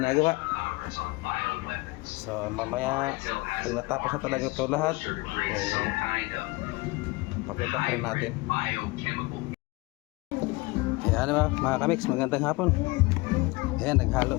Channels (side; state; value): right; quieter; 23.6 dB